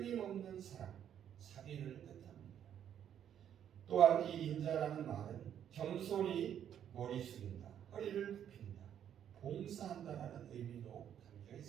사랑, 자비를 뜻합니다. 또한 이 인자라는 말은 겸손히 머리 숙인다, 허리를 굽힌다, 봉사한다라는 의미도 담겨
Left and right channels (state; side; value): quieter; left; 9.6 dB